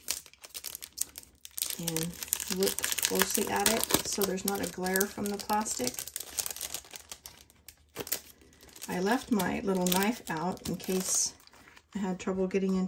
and look closely at it so there's not a glare from the plastic. I left my little knife out in case I had trouble getting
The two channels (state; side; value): identical; both; correlation 1.00